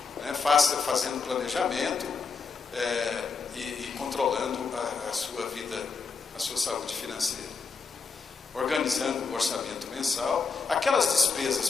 Né? Fazendo planejamento e controlando a sua vida, a sua saúde financeira. Organizando o orçamento mensal. Aquelas despesas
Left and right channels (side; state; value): right; quieter; 5.1 dB